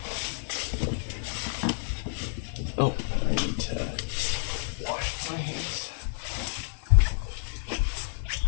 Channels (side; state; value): right; silent; digital silence